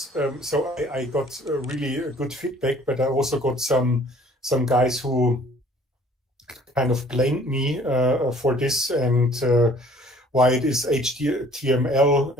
I got really good feedback, but I also got some guys who kind of blamed me for this and why it is HTML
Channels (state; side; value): normal; both; correlation 0.54